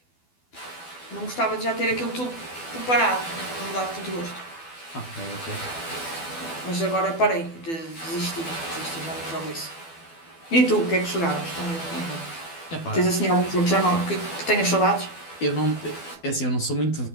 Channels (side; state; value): right; late; 12 ms